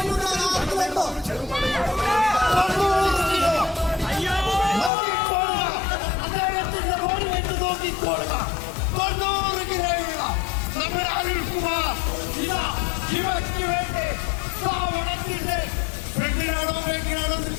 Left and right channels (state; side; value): drops out; right; at 4.9 s